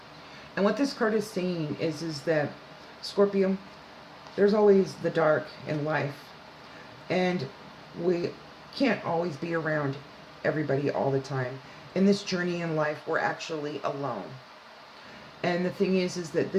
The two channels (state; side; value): identical; both; correlation 1.00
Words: And what this card is saying is that, Scorpio, there's always the dark in life. And we can't always be around everybody all the time. In this journey in life, we're actually alone. And the thing is that